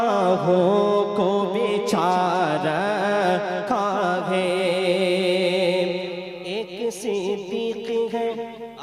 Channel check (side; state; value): both; identical; correlation 1.00